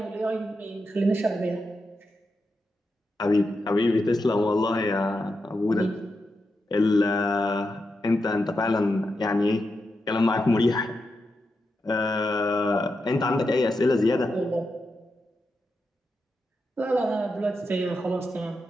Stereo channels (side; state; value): both; normal; correlation 0.86